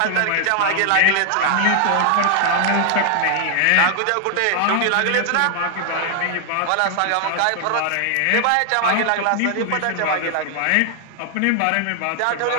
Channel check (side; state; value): both; different; correlation 0.00